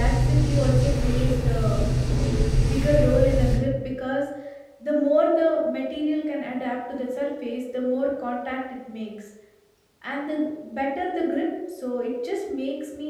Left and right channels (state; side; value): identical; both; correlation 1.00